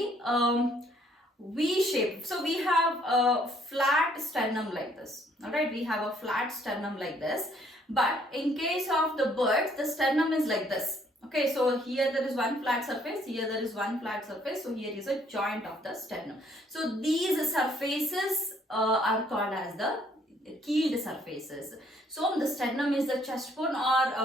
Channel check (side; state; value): both; normal; correlation 0.65